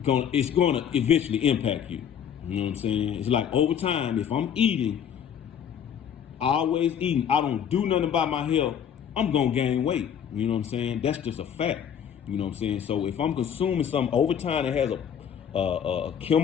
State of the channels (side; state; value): right; quieter; 8.5 dB